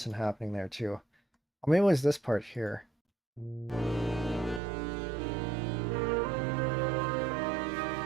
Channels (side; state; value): left; drops out; at 4.6 s